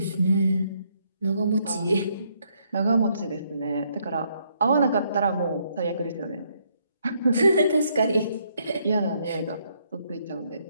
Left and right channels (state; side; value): inverted; both; correlation -0.72